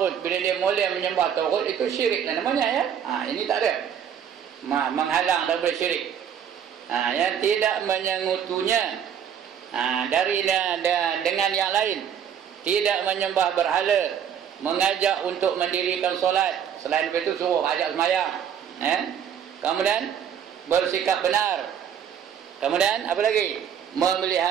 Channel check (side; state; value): left; quieter; 8.6 dB